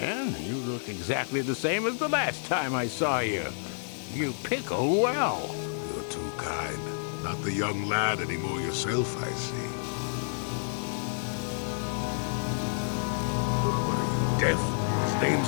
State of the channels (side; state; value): right; silent; digital silence